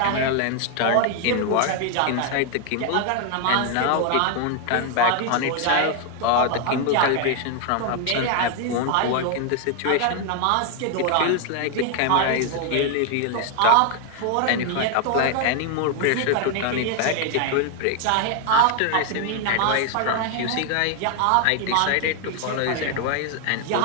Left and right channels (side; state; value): both; different; correlation 0.00